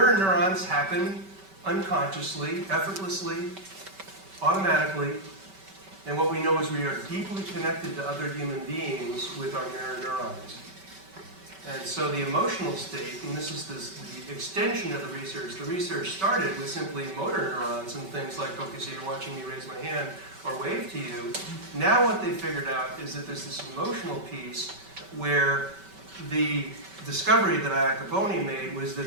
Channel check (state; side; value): late; left; 5.2 ms